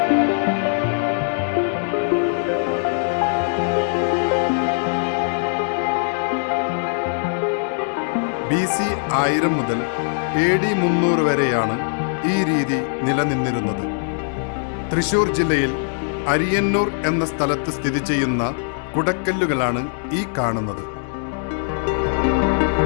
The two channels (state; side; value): silent; right; 63 dB below the other